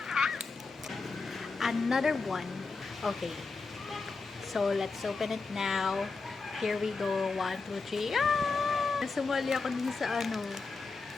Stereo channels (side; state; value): right; quieter; 4.2 dB